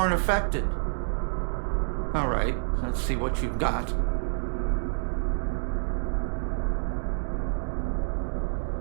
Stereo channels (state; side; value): silent; left; digital silence